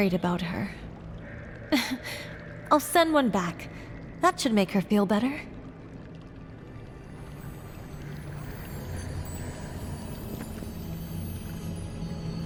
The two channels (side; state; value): both; identical; correlation 1.00